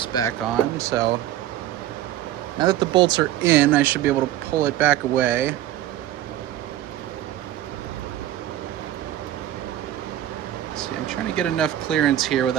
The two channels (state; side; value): quieter; left; 13.0 dB